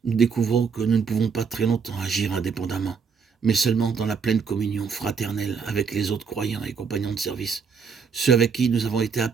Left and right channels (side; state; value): left; quieter; 5.8 dB